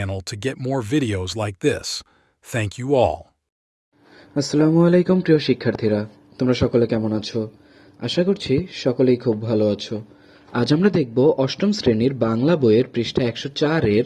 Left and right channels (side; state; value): both; identical; correlation 1.00